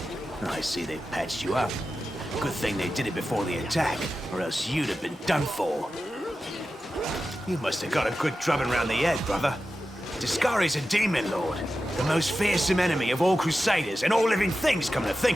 I see they've patched you up. Good thing they did it before the attack, or else you'd have been done for. You must have got a good drubbing round the head, brother. Discari's a demon lord, the most fearsome enemy of all crusaders and all living things, come to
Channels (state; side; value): normal; both; correlation 0.92